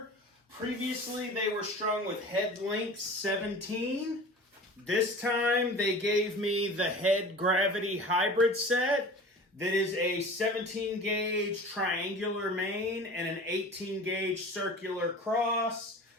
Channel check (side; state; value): both; normal; correlation 0.39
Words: Previously, they were strung with head length 17. This time they gave me the Head Gravity Hybrid set that is a 17 gauge triangular main and an 18 gauge circular cross.